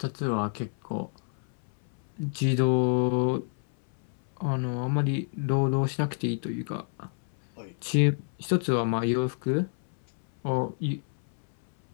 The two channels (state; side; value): silent; right; 59 dB below the other